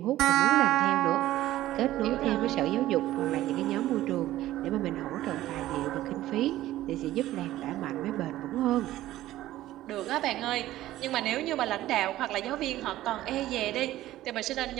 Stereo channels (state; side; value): quieter; left; 14.9 dB